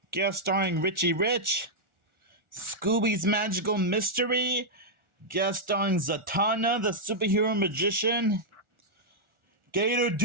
guest starring Richie Rich. Scooby's Magical Mystery, guest starring Zatanna, the superhero magician. Gator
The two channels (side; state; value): left; late; 1.4 ms